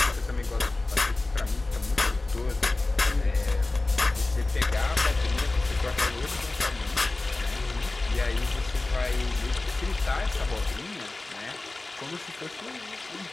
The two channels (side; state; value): right; quieter; 3.1 dB